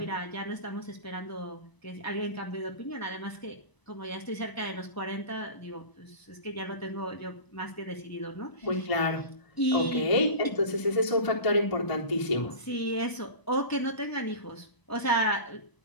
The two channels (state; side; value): late; right; 1.0 ms